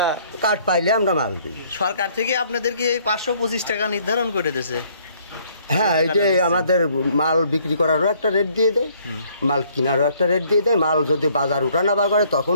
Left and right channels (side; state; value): both; inverted; correlation -0.63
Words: কার্ড পাইলে আমরা মাল দিই। সরকার থেকে আপনাদেরকে এই 525 টাকা নির্ধারণ করে দিয়েছে? হ্যাঁ, এটাই আমাদের মাল বিক্রি করারও একটা রেট দিয়ে দেয়, মাল কেনারও একটা রেট দিয়ে দেয়। মাল যদি বাজার উঠানাবা করে